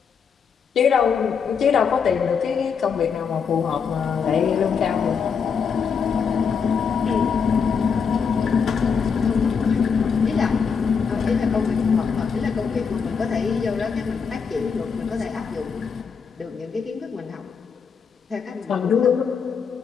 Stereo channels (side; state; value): right; quieter; 6.2 dB